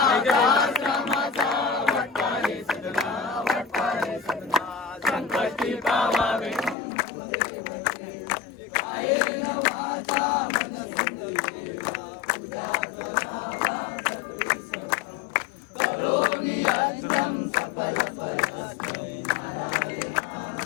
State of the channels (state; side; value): drops out; right; at 6.8 s